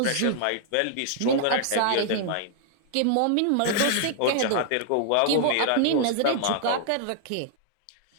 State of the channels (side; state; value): both; different; correlation -0.01